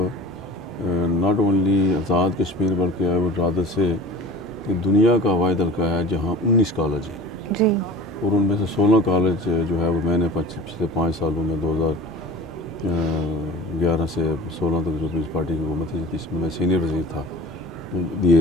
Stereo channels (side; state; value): both; normal; correlation 0.39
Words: नॉट ओनली आज़ाद कश्मीर बल्कि आई वुड रादर से कि दुनिया का वाहिद हल्का है जहाँ 19 कॉलेज हैं जी। और उनमें से 16 कॉलेज जो है वो मैंने पिछले 5 सालों में 2011 से 16 तक जो पीपल्स पार्टी की हुकूमत थी जिसमें मैं सीनियर वज़ीर था